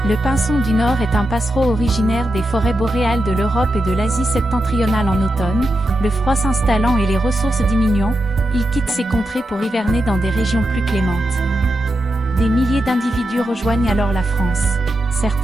Le pinson du Nord est un passereau originaire des forêts boréales de l'Europe et de l'Asie septentrionale en automne. Le froid s'installant et les ressources diminuant, il quitte ces contrées pour hiverner dans des régions plus clémentes. Des milliers d'individus rejoignent alors la France.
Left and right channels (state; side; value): normal; both; correlation 0.88